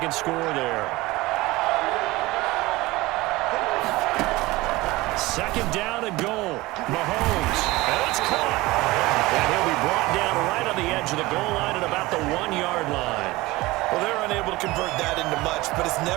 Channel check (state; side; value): quieter; left; 20.2 dB